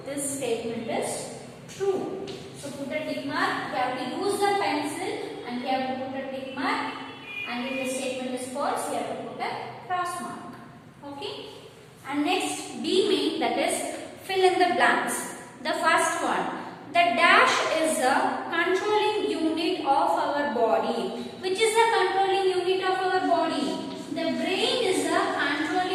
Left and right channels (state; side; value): identical; both; correlation 1.00